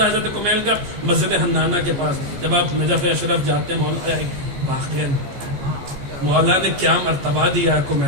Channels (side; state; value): left; late; 14 ms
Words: حضرت کمیل کا؟ مسجد حنانہ کے پاس. جب آپ نجف اشرف جاتے ہیں مولا نے کیا مرتبہ دیا